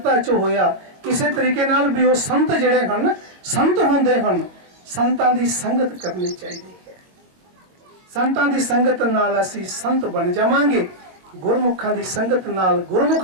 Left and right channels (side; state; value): left; late; 22 ms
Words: 'ਚ ਹੋਇਆ, ਕਿਸੇ ਤਰੀਕੇ ਨਾਲ ਵੀ ਉਹ ਸੰਤ ਜਿਹੜੇ ਹਨ ਸੰਤ ਹੁੰਦੇ ਹਨ। ਸੰਤਾਂ ਦੀ ਸੰਗਤ ਕਰਨੀ ਚਾਹੀਦੀ ਹੈ। ਸੰਤਾਂ ਦੀ ਸੰਗਤ ਨਾਲ ਅਸੀਂ ਸੰਤ ਬਣ ਜਾਵਾਂਗੇ, ਗੁਰਮੁਖਾਂ ਦੀ ਸੰਗਤ ਨਾਲ